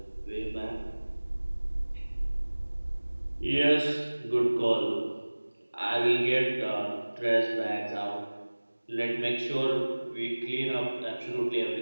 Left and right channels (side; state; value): both; inverted; correlation -1.00